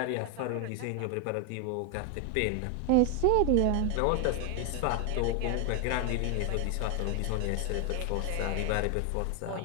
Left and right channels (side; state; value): both; different; correlation 0.01